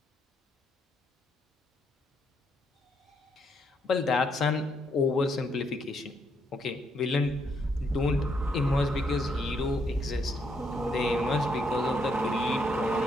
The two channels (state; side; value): normal; both; correlation 0.75